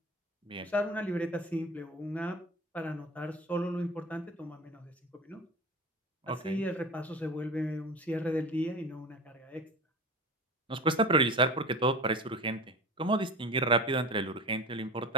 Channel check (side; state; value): both; normal; correlation 0.33